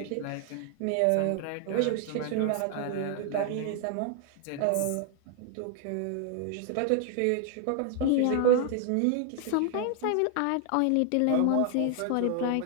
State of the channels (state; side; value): different; both; correlation 0.00